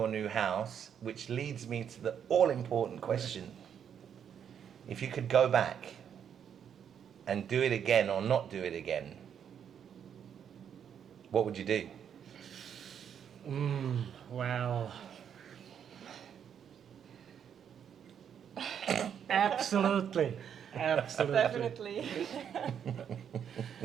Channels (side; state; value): left; quieter; 8.3 dB